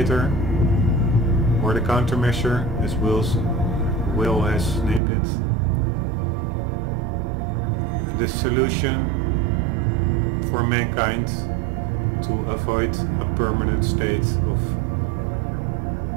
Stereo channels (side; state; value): left; drops out; at 5.0 s